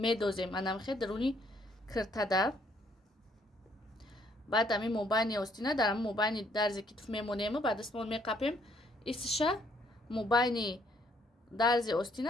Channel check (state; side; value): normal; both; correlation 0.67